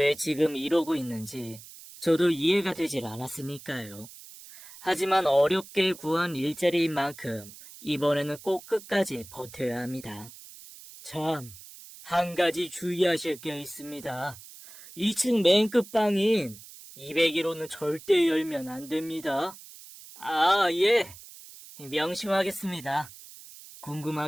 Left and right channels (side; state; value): right; noise; hiss, 18 dB below the sound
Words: 지금 이러고 있는지 저도 이해가 되질 않았으니까요. 하지만 어렵게 구한 일자리인 만큼 이번에는 꼭 끝까지 버텨야 합니다. 참, 한 가지 주의하실 게 있습니다. 2층 맨 끝방인 201호는 절대 열면 안 됩니다. 아, 예. 명심하겠습니다.